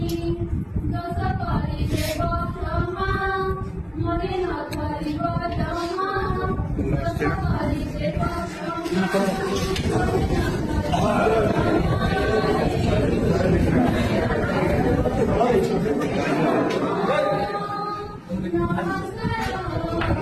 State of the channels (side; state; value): both; identical; correlation 1.00